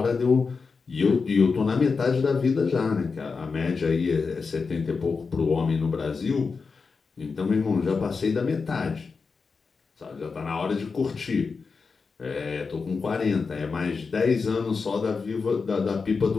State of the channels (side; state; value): right; quieter; 4.8 dB